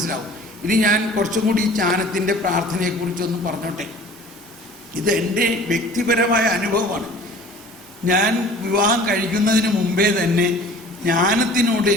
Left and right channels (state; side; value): normal; both; correlation 0.46